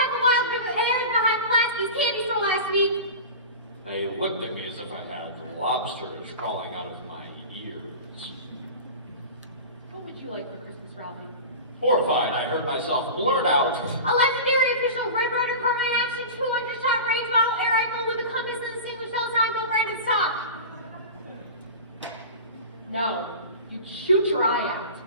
of wild berries behind Pulaski's candy store last week. They looked at me as if I had lobsters crawling out of my ears. What would you like for Christmas, Ralphie? Horrified, I heard myself blurt out, A legendary official Red Rider Carbine Action 200-shot range model air rifle with a compass and distinguished Calzone no branded stock. No, you'd shoot your eye out.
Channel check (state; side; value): inverted; both; correlation -0.31